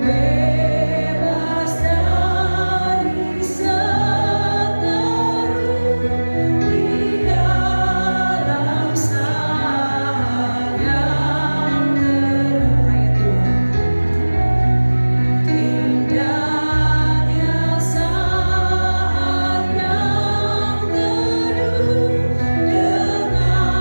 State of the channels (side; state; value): both; inverted; correlation -1.00